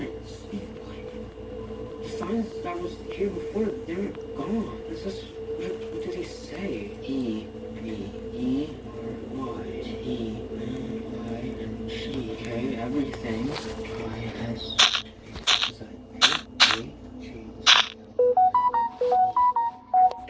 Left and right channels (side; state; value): both; identical; correlation 1.00